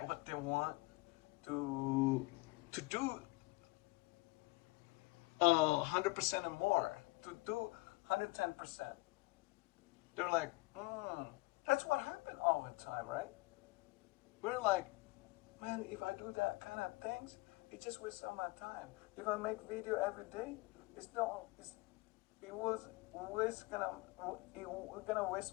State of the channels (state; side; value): quieter; right; 24.1 dB